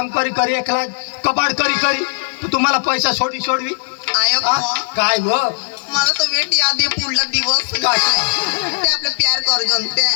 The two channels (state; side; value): silent; right; digital silence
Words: करी एकला कबाड करी तुम्हाला पैसा सोडवी काय व मला तो वेट याद आहे पुढला दिवस ते आपले प्यार करू जनते